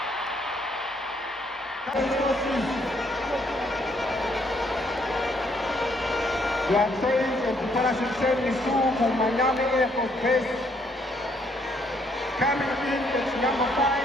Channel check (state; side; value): normal; both; correlation 0.69